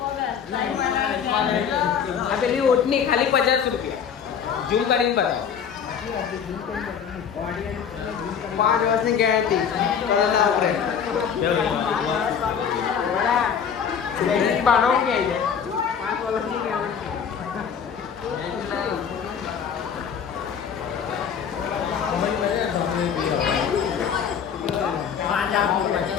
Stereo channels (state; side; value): quieter; right; 7.5 dB